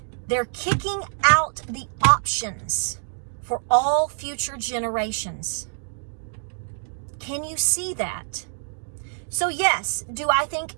They're kicking out the options for all future generations. Can you see that? So yes, do I think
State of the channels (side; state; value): left; silent; digital silence